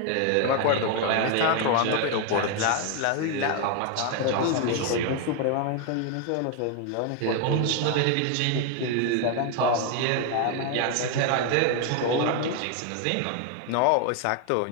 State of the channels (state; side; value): different; both; correlation 0.01